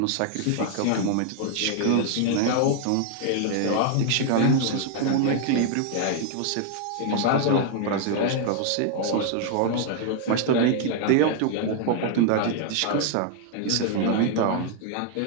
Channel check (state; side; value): different; both; correlation 0.00